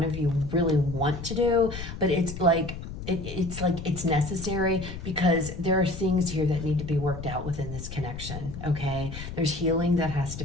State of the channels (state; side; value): noise; left; rumble, 9 dB below the sound